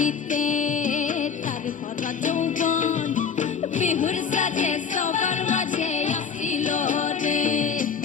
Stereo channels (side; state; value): right; quieter; 6.5 dB